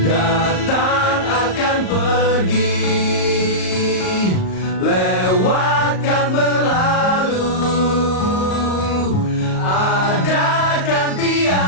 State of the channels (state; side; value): late; right; 38 ms